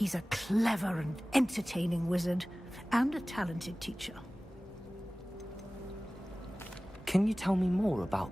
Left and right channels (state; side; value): normal; both; correlation 0.98